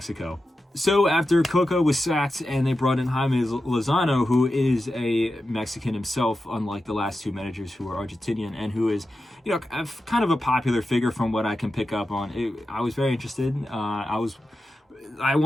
So after Coca was sacked and they brought in Jaime Lozano, who is a Mexican himself, unlike the last two managers who are Argentinian, and who is, kind of a popular figure from what I can pick up on. I was very interested. I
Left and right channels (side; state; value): both; normal; correlation 0.91